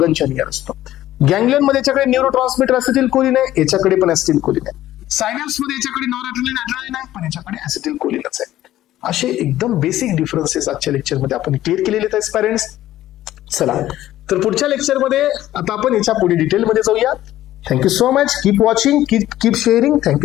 नियर असतो. गँग्लियन मध्ये याच्याकडे न्यूरो ट्रान्समिटर ऍसिटिल कोलिन आहे, याच्याकडे पण ऍसिटिल कोलिन आहे. सायनॅप्स मध्ये याच्याकडे नॉरएड्रेनालिन ऍड्रेनालिन आहे, पण याच्याकडे ऍसिटिल कोलिनच आहे. असे एकदम बेसिक डिफरन्सेस आजच्या लेक्चरमध्ये आपण क्लिअर केलेले आहेत पॅरेंट्स. चला तर पुढच्या लेक्चरमध्ये आता आपण याच्या पुढे डिटेलमध्ये जाऊया. Thank you so much. Keep watching, keep sharing. Thank you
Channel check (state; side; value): quieter; right; 13.9 dB